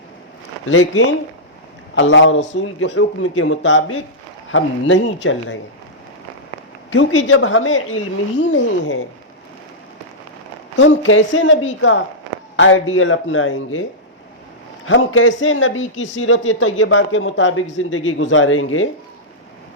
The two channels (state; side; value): normal; both; correlation -0.11